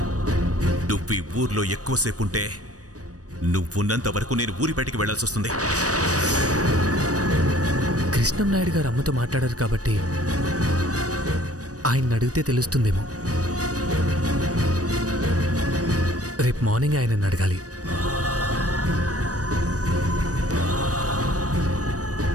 నువ్వు ఈ ఊర్లో ఎక్కువసేపు ఉంటే నువ్వున్నంత వరకు నేను ఊరి బయటికి వెళ్లాల్సి వస్తుంది. కృష్ణం నాయుడు గారు అమ్మతో మాట్లాడారు కాబట్టి ఆయన అడిగితే తెలుస్తుందేమో. రేపు మార్నింగ్ ఆయనను అడగాలి.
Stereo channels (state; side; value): late; left; 0.66 ms